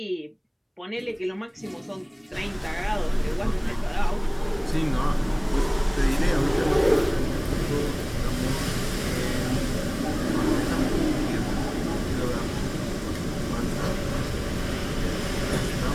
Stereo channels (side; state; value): both; identical; correlation 1.00